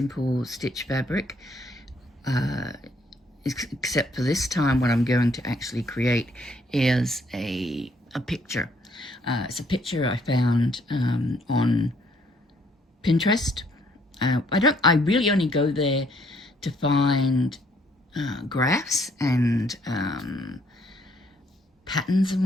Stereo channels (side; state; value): both; normal; correlation 0.67